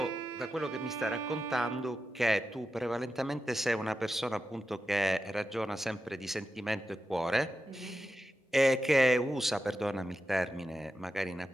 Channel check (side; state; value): both; normal; correlation 0.90